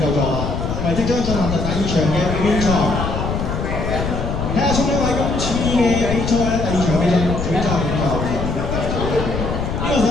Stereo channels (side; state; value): left; noise; rumble, 3 dB below the sound